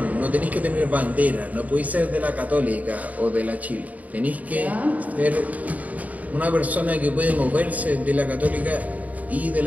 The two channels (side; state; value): left; late; 0.073 ms